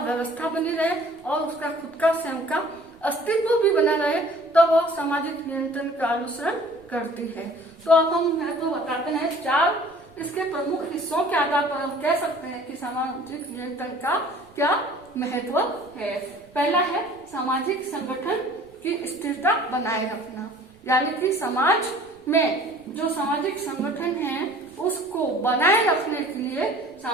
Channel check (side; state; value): right; noise; rumble, 29 dB below the sound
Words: व्यवस्था बनी रहे और उसका खुद का स्वयं का अस्तित्व भी बना रहे, तो वह सामाजिक नियंत्रण का अनुसरण करती है। तो अब हम महत्व बताते हैं। 4 इसके प्रमुख हिस्सों के आधार पर हम कह सकते हैं कि सामाजिक नियंत्रण का क्या महत्व है। पहला है सामाजिक संगठन की स्थिरता बनाए रखना, यानी कि समाज में जो सामाजिक संगठन है उसको बनाए रखने के लिए